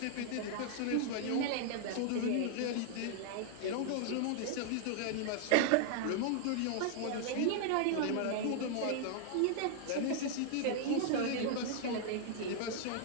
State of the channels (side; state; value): both; different; correlation -0.01